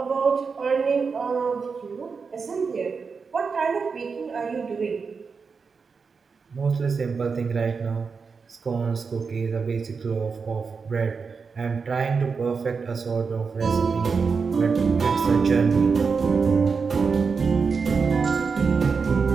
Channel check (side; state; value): left; quieter; 5.2 dB